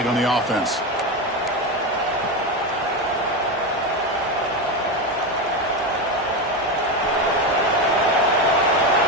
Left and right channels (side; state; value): both; normal; correlation 0.15